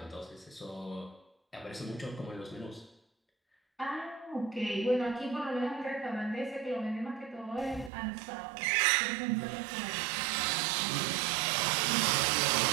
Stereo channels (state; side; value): drops out; left; at 7.9 s